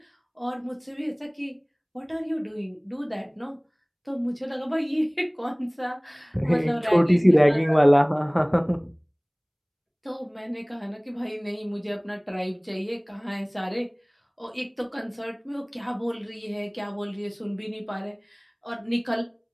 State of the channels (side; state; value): both; identical; correlation 1.00